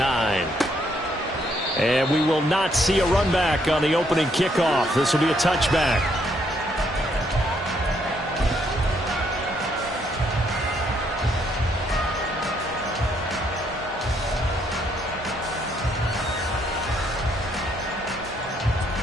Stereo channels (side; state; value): both; normal; correlation 0.71